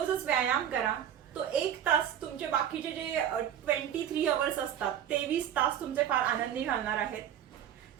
व्यायाम करा. तो 1 तास तुमचे बाकीचे जे 23 अवर्स असतात 23 तास तुमचे फार आनंदी घालणार आहेत.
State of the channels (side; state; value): left; quieter; 9.9 dB